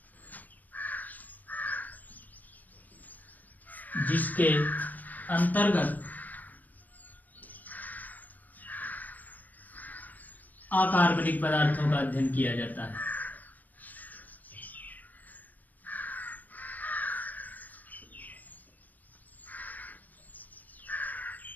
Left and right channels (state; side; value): late; right; 0.083 ms